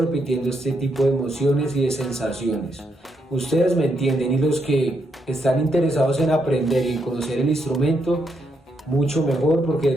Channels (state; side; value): normal; both; correlation 0.78